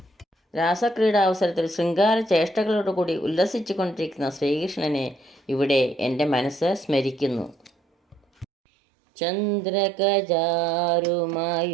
രാസക്രീഡാവസരത്തിൽ ശൃംഗാര ചേഷ്ടകളോടുകൂടി ഉല്ലസിച്ചു കൊണ്ടിരിക്കുന്ന ശ്രീകൃഷ്ണനെ ഇവിടെ എൻ്റെ മനസ്സ് സ്മരിക്കുന്നു.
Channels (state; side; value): drops out; left; at 8.5 s